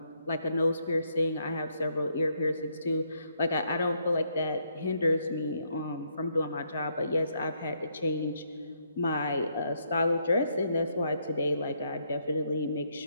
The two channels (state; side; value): inverted; both; correlation -0.74